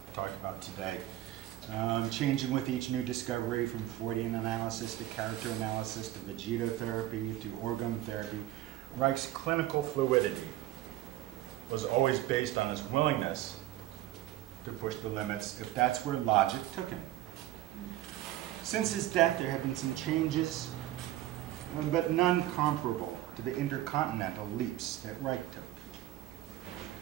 talked about today. Changing with each new discovery, from Freudian analysis to character analysis to vegetotherapy to orgone therapy. Reich's clinical fluidity was always based on his willingness to push the limits if that's where logic took him. Since his death, there have been some changes, but none comparable to the intercontinental leaps that Reich took.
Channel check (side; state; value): left; quieter; 14.5 dB